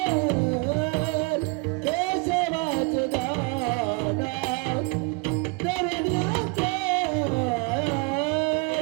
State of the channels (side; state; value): left; quieter; 28.9 dB